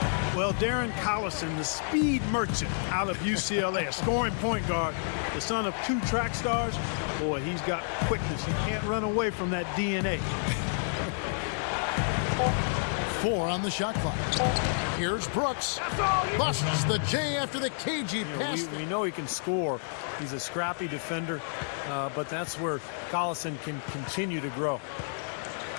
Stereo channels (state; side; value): silent; right; 58 dB below the other